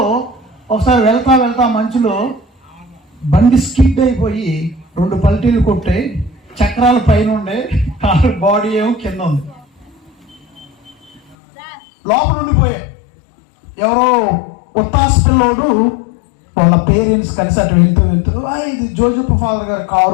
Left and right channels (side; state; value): right; drops out; at 11.4 s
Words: ఒకసారి వెళ్తా మంచులో బండి స్కిడ్ అయిపోయి 2 పల్టీలు కొట్టే, చక్రాల పైన ఉండే, బాడీ ఏమో కింద ఉంది. లోపల ఉండిపోయే ఎవరో ఉత్తాస్ పిల్లోడు వాళ్ళ పేరెంట్స్ కలిసి అటు వెళ్తూ ఇది జోజప్ప ఫాదర్ గారి